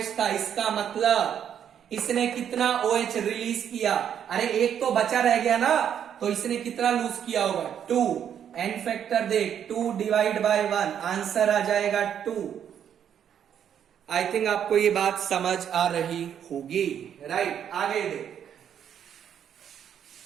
था। इसका मतलब इसने कितना OH रिलीज किया? अरे एक तो बचा रह गया ना, तो इसने कितना लूज किया होगा? 2। एन फैक्टर देख, 2 डिवाइड बाय 1, आंसर आ जाएगा 2। आई थिंक आपको ये बात समझ आ रही होगी, राइट। आगे देख,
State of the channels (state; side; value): quieter; left; 9.0 dB